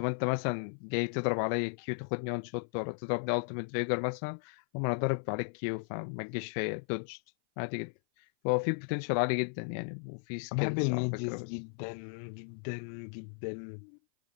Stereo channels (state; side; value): silent; right; 55 dB below the other